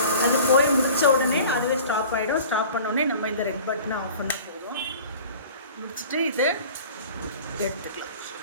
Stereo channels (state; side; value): inverted; both; correlation -0.43